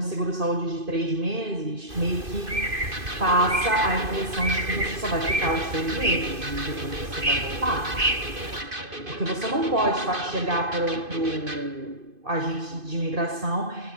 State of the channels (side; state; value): left; late; 2.5 ms